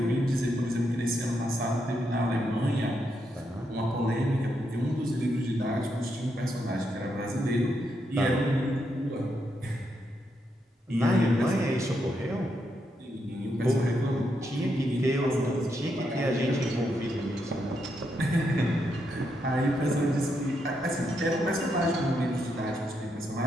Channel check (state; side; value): normal; both; correlation 0.80